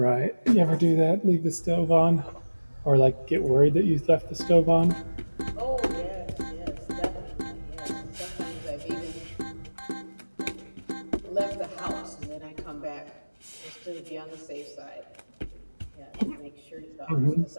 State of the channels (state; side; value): inverted; both; correlation -1.00